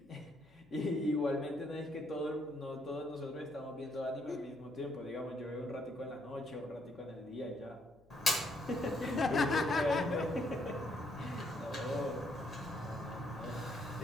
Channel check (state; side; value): noise; left; hum, 30 dB below the sound